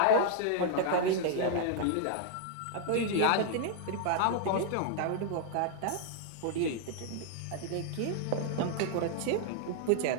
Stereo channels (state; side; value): different; both; correlation 0.00